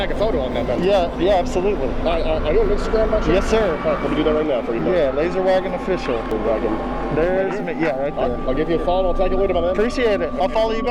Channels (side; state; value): both; identical; correlation 1.00